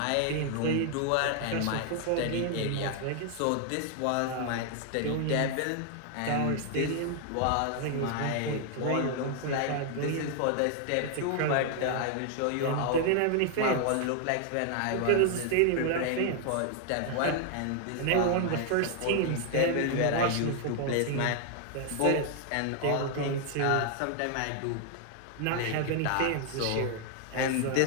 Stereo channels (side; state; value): both; different; correlation 0.00